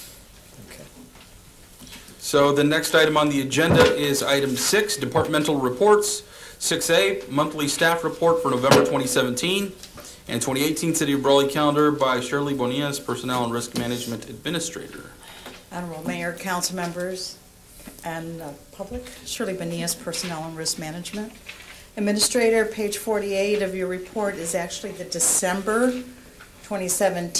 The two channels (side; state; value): both; identical; correlation 1.00